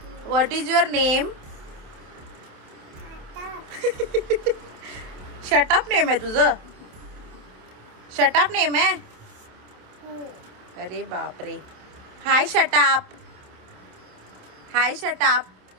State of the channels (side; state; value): left; late; 27 ms